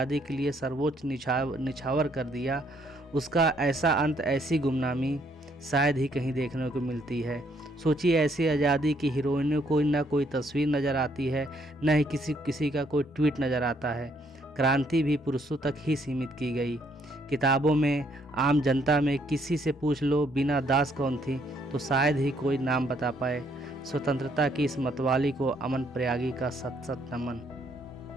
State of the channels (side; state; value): both; normal; correlation 0.69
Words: के लिए सर्वोच्च निछावर कर दिया, उसका ऐसा अंत, ऐसी गुमनामी शायद ही कहीं देखने को मिलती है। सोचिए, ऐसी आज़ादी की हीरोइनों को न कोई तस्वीर नज़र आती है, न ही किसी का कोई ट्वीट नज़र आता है। क्रांति भी पुरुषों तक ही सीमित की गई। किताबों में, आम जनता में किसी से पूछ लो बीना दास कौन थी, तो शायद ही कोई नाम बता पाए। स्वतंत्रता की इस मतवाली को अमन प्रयागी का सत सत नमन।